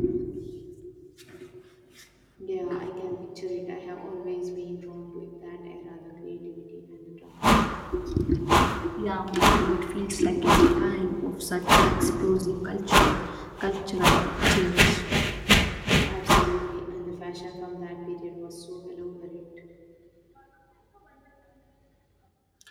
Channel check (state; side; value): identical; both; correlation 1.00